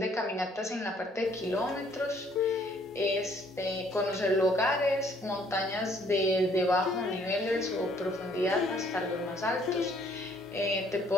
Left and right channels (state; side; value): normal; both; correlation 0.63